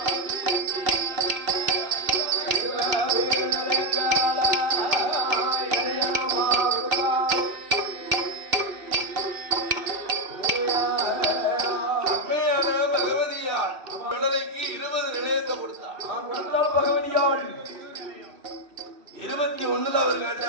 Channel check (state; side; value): late; left; 2.7 ms